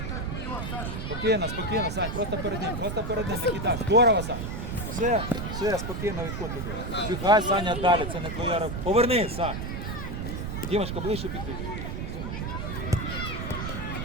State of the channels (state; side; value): noise; right; rumble, 4 dB below the sound